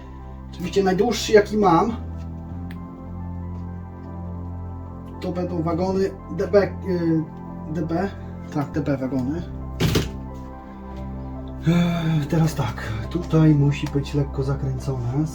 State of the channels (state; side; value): identical; both; correlation 1.00